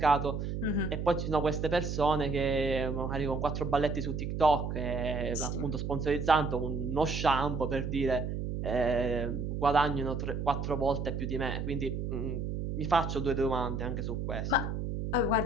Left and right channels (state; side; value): noise; right; hum, 3 dB below the sound